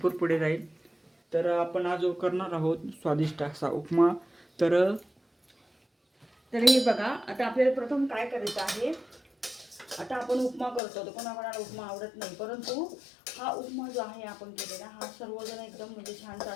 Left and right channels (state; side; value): drops out; right; at 10.8 s